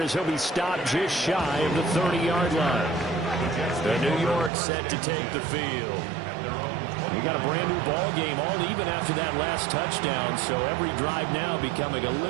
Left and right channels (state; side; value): drops out; left; at 4.5 s